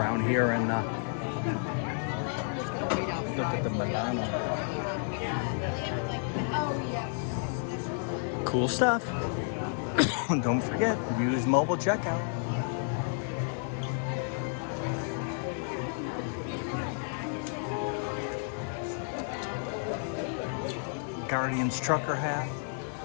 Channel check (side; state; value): right; silent; 57 dB below the other